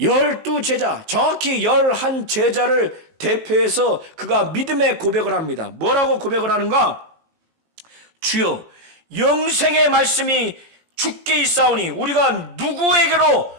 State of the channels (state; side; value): late; left; 19 ms